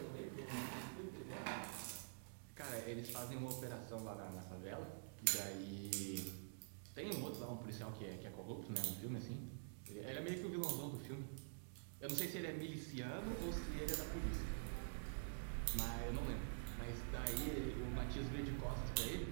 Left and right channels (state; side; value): silent; left; digital silence